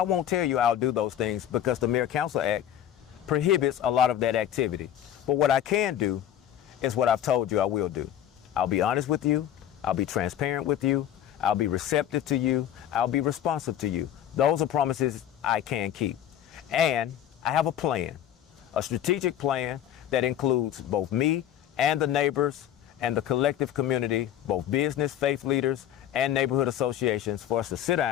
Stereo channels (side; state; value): right; quieter; 10.9 dB